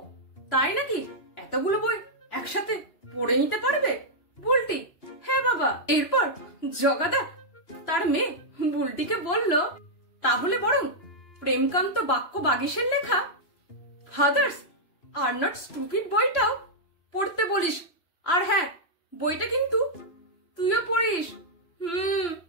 তাই নাকি? এতগুলো বই একসাথে পড়ে নিতে পারবে? বুলটি, হ্যাঁ বাবা। এরপর জগাদা তার মেয়ে বুলটিকে বলল, তাহলে বরং প্রেমকান্ত বাক্য বাগীশের লেখা ফাদার্স আর নট স্টুপিড বইটাও পড়তে বলিস। আর হ্যাঁ, বইটা কিন্তু তুইও পড়িস।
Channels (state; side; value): late; right; 3.0 ms